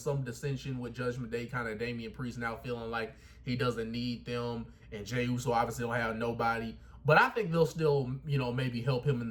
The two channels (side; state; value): both; identical; correlation 1.00